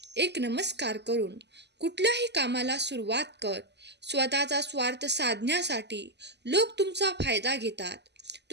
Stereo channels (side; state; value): left; late; 0.50 ms